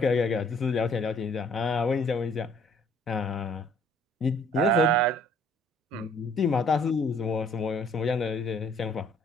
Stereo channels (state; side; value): normal; both; correlation 0.58